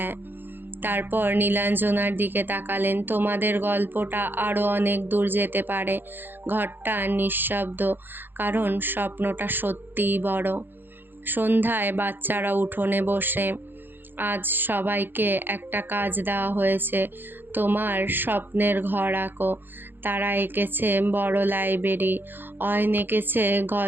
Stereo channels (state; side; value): late; left; 0.097 ms